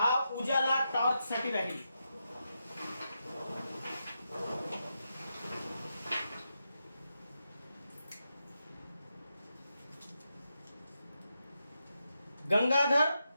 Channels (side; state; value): both; inverted; correlation -0.86